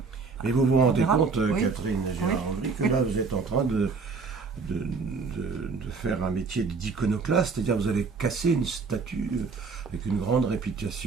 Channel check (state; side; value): quieter; left; 4.7 dB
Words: Mais vous vous rendez verra. compte, Oui. Catherine Gérard-Andry, que là vous êtes en train de faire un métier d'iconoclaste, c'est-à-dire vous allez casser une statue avec une grande